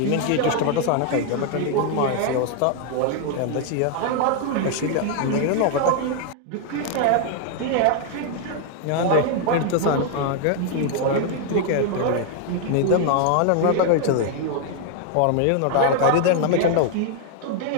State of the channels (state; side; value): different; both; correlation 0.00